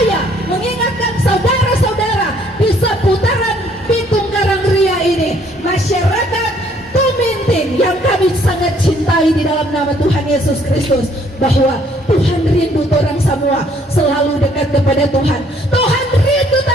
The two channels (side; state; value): both; normal; correlation 0.63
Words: mengingatkan saudara-saudara di seputaran Pitung Karangria ini, masyarakat Tuminting yang kami sangat cintai di dalam nama Tuhan Yesus Kristus, bahwa Tuhan rindu orang semua selalu dekat kepada Tuhan. Tuhan rindu